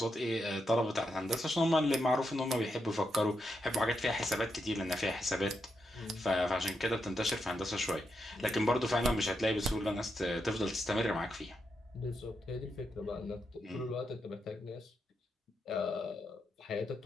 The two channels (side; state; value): both; normal; correlation 0.83